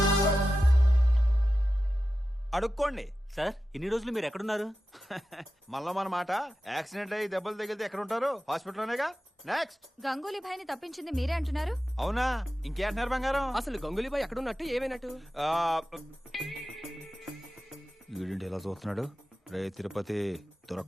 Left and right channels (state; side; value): normal; both; correlation 0.92